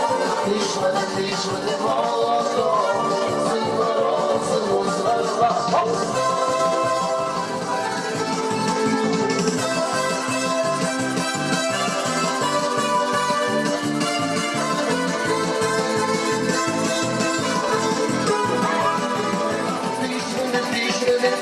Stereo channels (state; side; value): identical; both; correlation 1.00